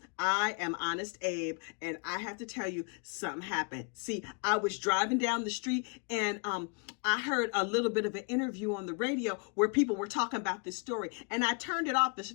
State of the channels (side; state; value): right; quieter; 36.3 dB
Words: I am Honest Abe, and I have to tell you something happened. See, I was driving down the street and I heard a little bit of an interview on the radio where people were talking about this story, and I turned it off as